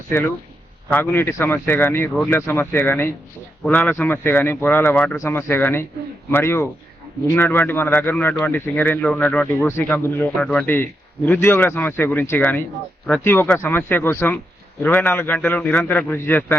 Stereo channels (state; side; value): normal; both; correlation 0.84